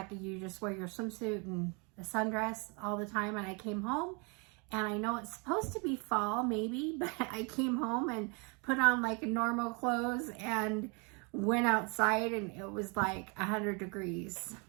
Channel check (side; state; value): left; quieter; 32.9 dB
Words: you just wear your swimsuit and a sundress all the time. And I came home, and I know it's supposed to be fall, maybe, but I came home and put on like normal clothes and went outside, and it was like 100 degrees